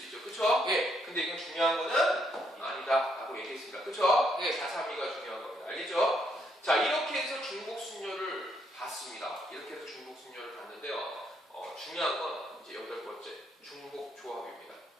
중요한 거는 아니다 라고 얘기했습니다. 그쵸? 네, 432가 중요한 겁니다. 알겠죠? 자, 이렇게 해서 중복순열을 봤습니다. 이렇게 해서 중복순열을 봤는데요. 중요한 건 이제 8번째 중복조합입니다.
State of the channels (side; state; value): both; normal; correlation 0.74